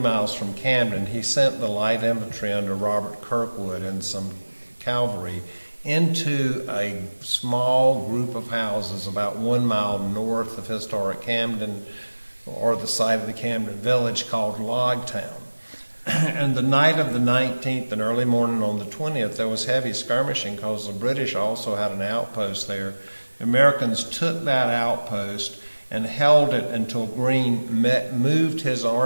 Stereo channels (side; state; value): both; inverted; correlation -1.00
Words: from Camden, he sent the light infantry under Robert Kirkwood and some cavalry into a small group of houses about 1 mile north of historic Camden, or the site of the Camden village, called Logtown. And the night of the 19th and early morning on the 20th, there was heavy skirmishing because the British also had an outpost there. The Americans took that outpost and held it until Greene moved his